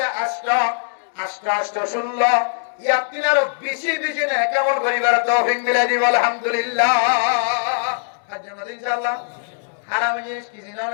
اشتا شلہ ইয়াতিনার বেশি বেশি না কেমন করিবার তৌফিক মিলাই দিব আলহামদুলিল্লাহ। হাজার মধ্যে ইনশাআল্লাহ হারাম জিনিস কি জানো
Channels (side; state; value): right; silent; digital silence